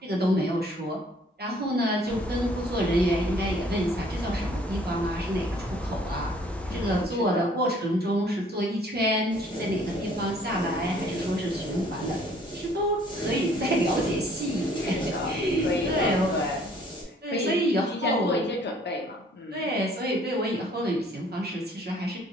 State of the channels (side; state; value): both; normal; correlation 0.59